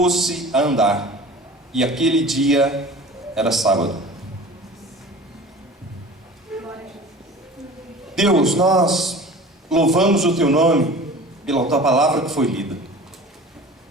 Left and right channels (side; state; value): both; normal; correlation 0.40